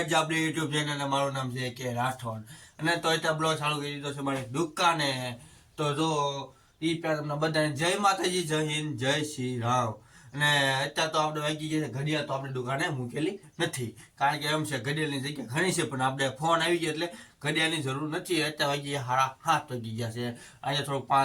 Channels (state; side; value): identical; both; correlation 1.00